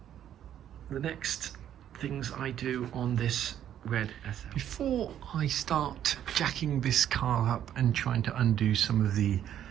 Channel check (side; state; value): left; quieter; 10.5 dB